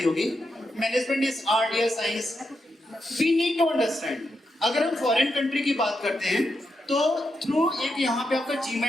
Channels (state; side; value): normal; both; correlation 0.84